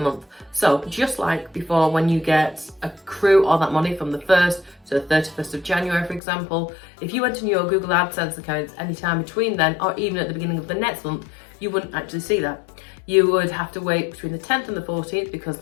month. So just like before, when you get accrue all that money from the 1st to the 31st of January, for example, if you went in your Google AdSense account anytime between then, or even at the beginning of the next month, you wouldn't actually see that. You would have to wait between the 10th and the 14th, because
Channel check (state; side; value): drops out; right; at 6.2 s